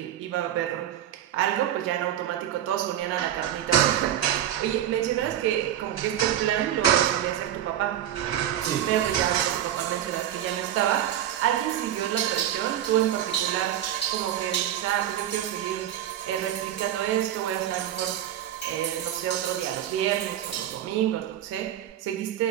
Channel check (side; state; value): left; quieter; 11.4 dB